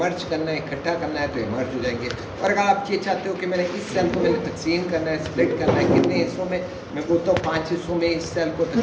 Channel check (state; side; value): identical; both; correlation 1.00